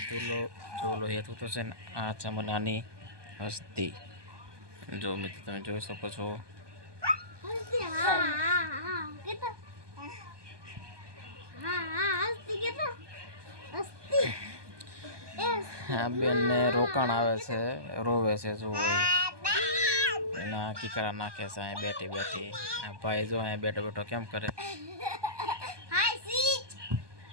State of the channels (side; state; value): left; late; 1.2 ms